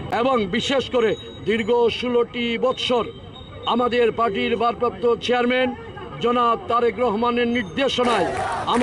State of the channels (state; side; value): identical; both; correlation 1.00